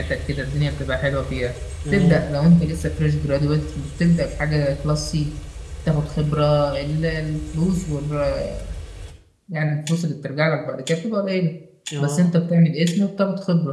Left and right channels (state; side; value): identical; both; correlation 1.00